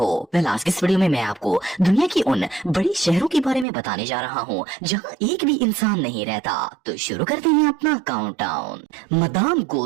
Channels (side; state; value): left; drops out; at 3.7 s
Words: वेल, आज की इस वीडियो में मैं आपको दुनिया की उन बड़ी शहरों के बारे में बताने जा रहा हूँ जहाँ एक भी इंसान नहीं रहता। तो शुरू करते हैं अपना काउंटडाउन। Madam